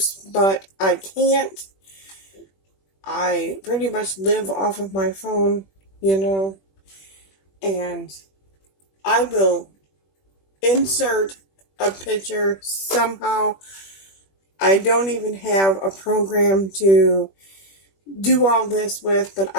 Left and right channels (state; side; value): late; right; 21 ms